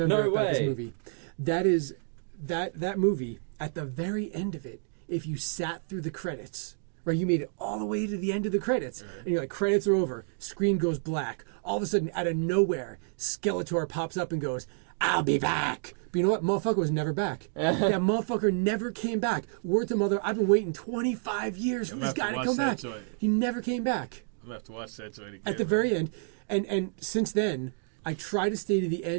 No about this way. movie. That is that movie at the very end of it. If you sat through the credits, right, you made it all the way to the end of the credits, and you're like, credits are over. Screen goes black. All of a sudden, out of nowhere, Skeletor pops up and goes, "I'll be back." But you know what? Motherfucker was never back. That motherfucker never came back. Word to mother, I've been waiting 25 years for I'm this gonna guy have to to come watch back. that joint. He never came back. I'm gonna have to watch that joint again. At the very end. And since then, I try to stay to the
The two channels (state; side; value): silent; left; 57 dB below the other